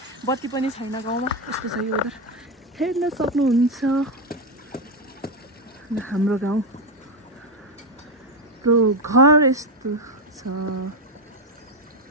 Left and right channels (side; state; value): both; normal; correlation 0.09